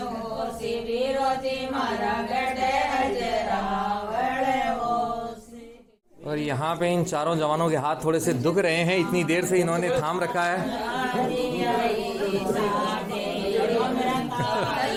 मारा गढ़ अजरावड़ और यहाँ पे इन चारों जवानों के हाथ थोड़े से दुख रहे हैं, इतनी देर से इन्होंने थाम रखा है।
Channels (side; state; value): both; identical; correlation 1.00